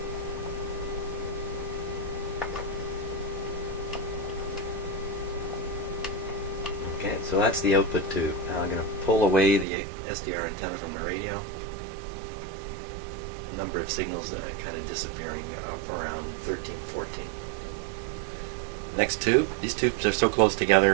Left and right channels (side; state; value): left; drops out; at 9.7 s